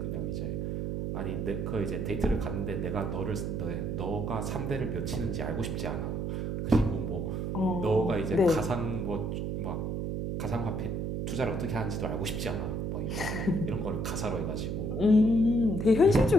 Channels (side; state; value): right; noise; hum, 2 dB below the sound